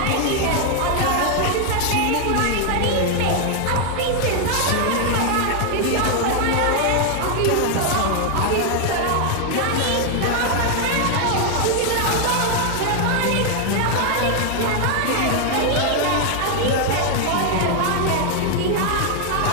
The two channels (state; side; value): different; both; correlation 0.00